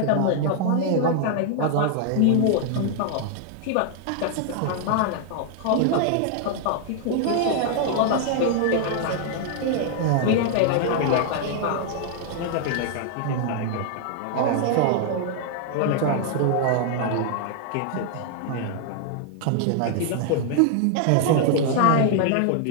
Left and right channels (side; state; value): both; different; correlation 0.00